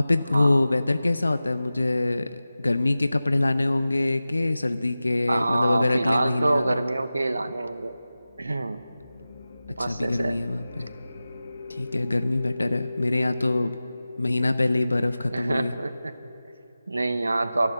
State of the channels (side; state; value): both; inverted; correlation -0.95